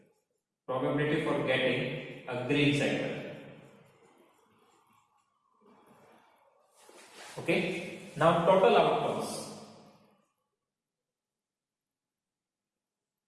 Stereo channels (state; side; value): identical; both; correlation 1.00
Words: Probability for getting a green sector. Okay. Now total outcomes.